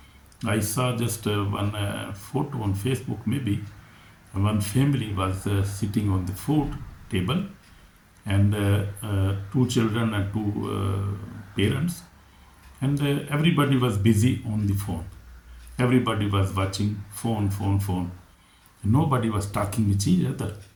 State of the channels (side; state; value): both; identical; correlation 1.00